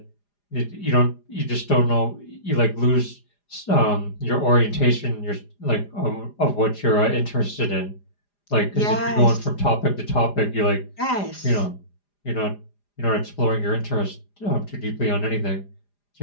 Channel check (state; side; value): late; right; 4.9 ms